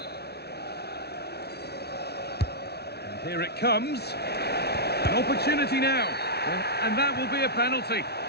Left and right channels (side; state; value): right; late; 0.48 ms